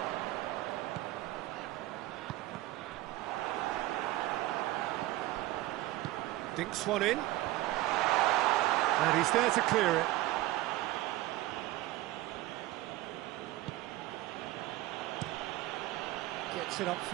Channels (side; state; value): left; quieter; 17.1 dB